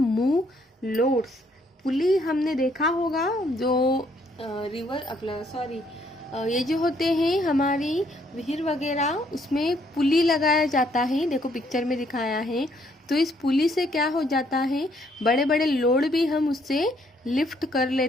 लोड्स। पुली हमने देखा होगा जो रिवर अपना सॉरी ये जो होते हैं हमारी विहिर वगैरह, उसमें पुली लगाया जाता है, देखो पिक्चर में दिखाया है। तो इस पुली से क्या हो जाता है, बड़े बड़े लोड भी हम उससे लिफ्ट कर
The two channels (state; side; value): normal; both; correlation 0.68